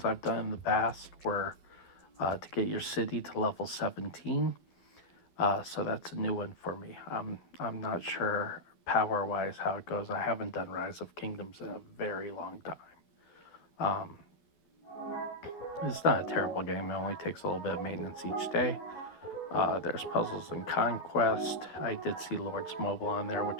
I've done in the past were to get your city to level 17. So that's a new one for me. I'm not sure power-wise how it goes. I haven't done Rise of Kingdoms in a very long time. Um, it's not a terrible game. It only takes a little bit of maintenance each day. There's Puzzles and Conquest. I did see Lord's Mobile on there,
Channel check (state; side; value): late; right; 12 ms